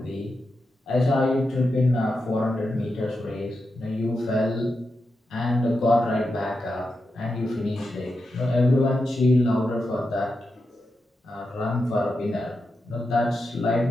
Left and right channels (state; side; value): normal; both; correlation 0.88